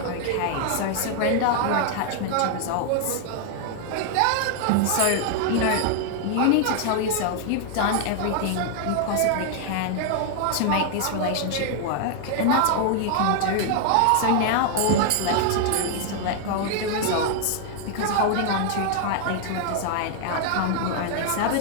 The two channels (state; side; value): different; both; correlation 0.00